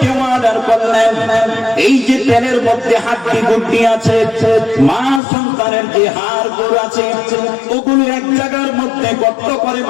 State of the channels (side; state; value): right; drops out; at 5.2 s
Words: অর্ডার করলেন, এই যে তেলের মধ্যে হাড্ডি গুড্ডি আছে, মা সন্তানের যে হাড় গোড় আছে, ওগুলো এক জায়গার মধ্যে গর্ত করে